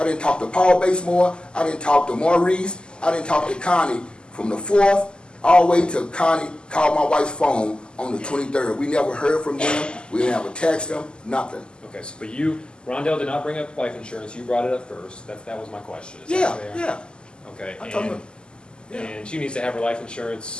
didn't talk to Paul Basemore, I didn't talk to Maurice, I didn't talk to Connie from the 4th all the way to Connie called my wife's phone on the 23rd. We never heard from them. We didn't have a text them, nothing. Okay, so but Rondell did not bring up life insurance. You brought it up first. That was my question. Is that Yeah, fair? yeah. Okay, I told him, yeah. and she needs to have her life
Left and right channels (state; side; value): late; right; 0.048 ms